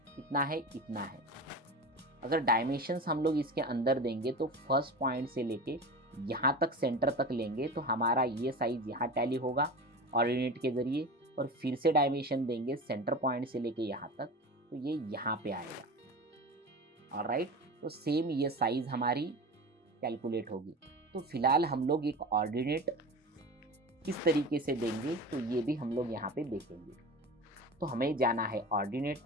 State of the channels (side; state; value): both; normal; correlation 0.31